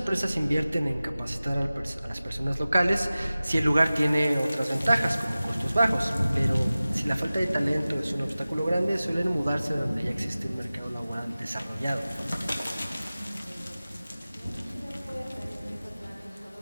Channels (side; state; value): both; inverted; correlation -0.97